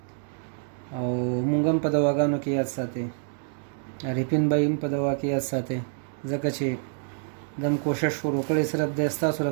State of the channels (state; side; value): silent; left; digital silence